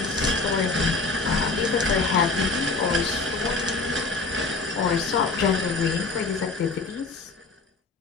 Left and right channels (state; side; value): quieter; right; 3.8 dB